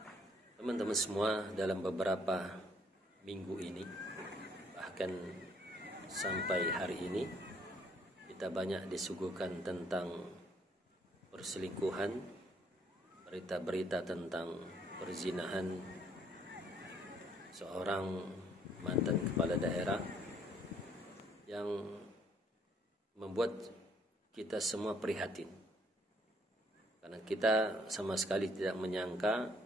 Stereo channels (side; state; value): both; normal; correlation 0.65